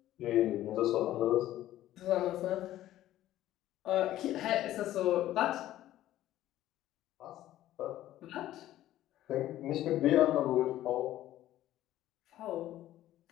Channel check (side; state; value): right; quieter; 13.7 dB